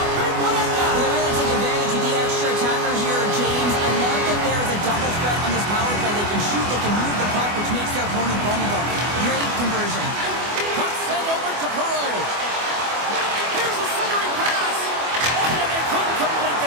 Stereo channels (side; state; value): left; late; 24 ms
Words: a big one at that. They really take advantage of the extra attacker here, James. I love that there is a double threat on this power play. They can shoot, they can move the puck, which makes their opponent vulnerable. Great conversion. Puck sent over to Perreault. Here's a centering pass. Oh, and they couldn't complete